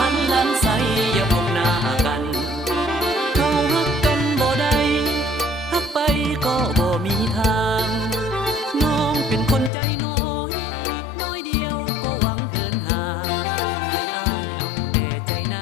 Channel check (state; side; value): drops out; right; at 9.7 s